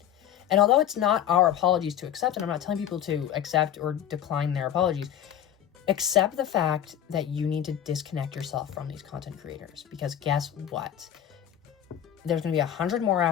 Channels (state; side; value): quieter; right; 10.4 dB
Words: And although it's not our apologies to accept, and I'm not telling people to accept or decline their apologies, accept the fact that you need to disconnect yourself from these content creators. Because guess what? There's going to be 100 more